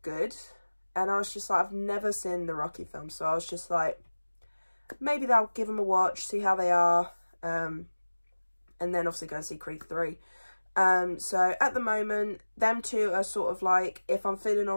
good. And I was just like, I've never seen the Rocky films, so I was just like, maybe I'll give them a watch, see how they are, and then obviously go and see Creed 3. So at the moment, them two are sort of like, if I'm feeling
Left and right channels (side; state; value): both; inverted; correlation -1.00